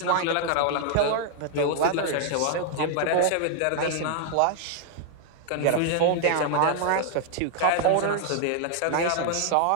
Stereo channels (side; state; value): both; different; correlation 0.00